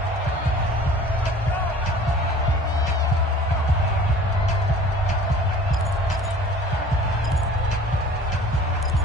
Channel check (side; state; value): both; normal; correlation 0.46